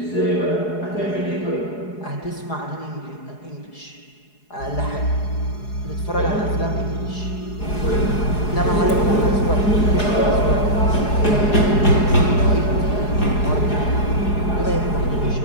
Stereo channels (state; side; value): late; right; 4.8 ms